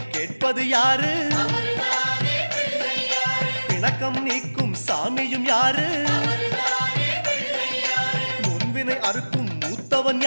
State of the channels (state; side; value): inverted; both; correlation -1.00